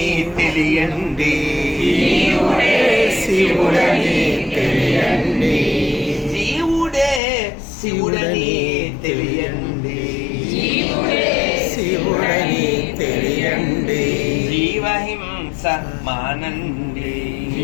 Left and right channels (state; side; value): drops out; right; at 7.2 s